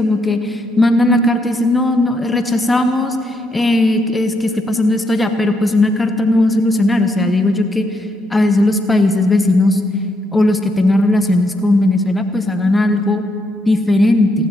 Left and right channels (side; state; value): both; normal; correlation 0.77